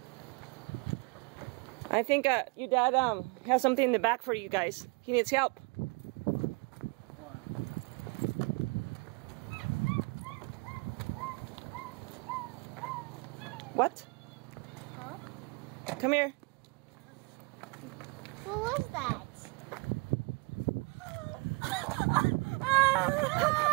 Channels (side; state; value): left; quieter; 29.8 dB